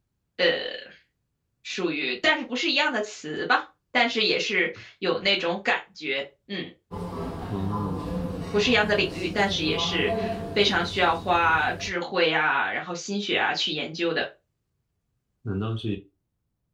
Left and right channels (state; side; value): identical; both; correlation 1.00